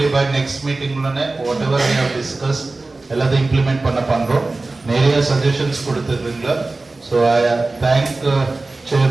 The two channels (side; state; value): left; quieter; 3.3 dB